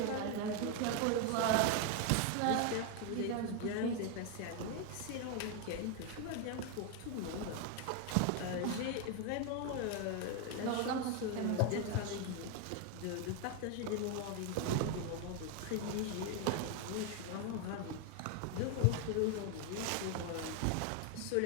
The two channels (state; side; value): different; both; correlation 0.01